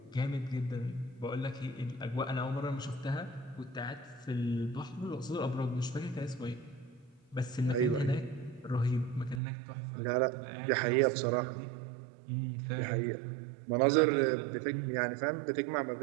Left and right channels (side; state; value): left; drops out; at 9.4 s